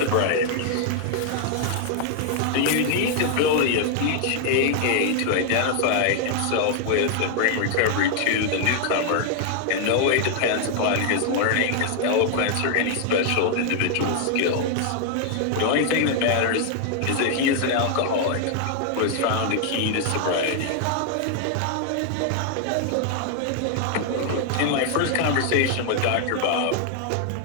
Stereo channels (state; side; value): different; both; correlation 0.00